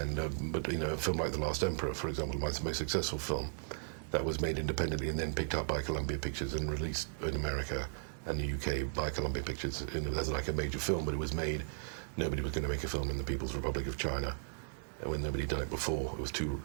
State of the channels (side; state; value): left; silent; 54 dB below the other